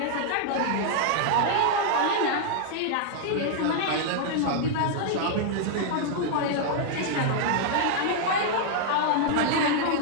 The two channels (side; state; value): both; different; correlation -0.01